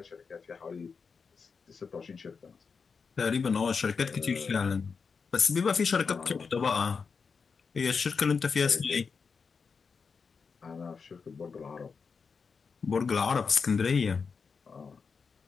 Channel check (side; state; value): right; quieter; 5.4 dB